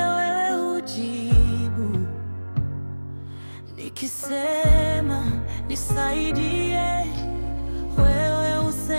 hujibu, nikisema nisaidie wewe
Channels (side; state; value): both; inverted; correlation -1.00